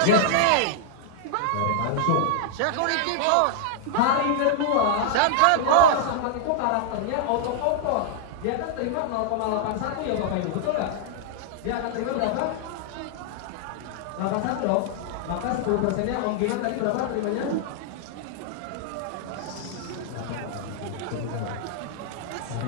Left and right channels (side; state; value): both; different; correlation -0.01